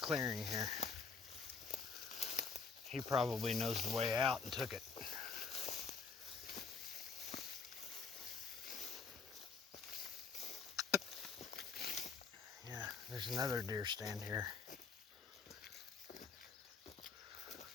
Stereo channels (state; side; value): quieter; right; 5.1 dB